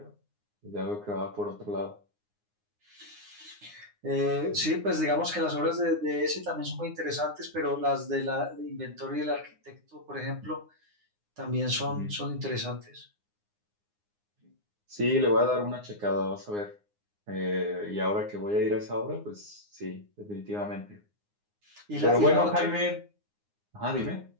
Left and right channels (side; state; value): left; late; 9.7 ms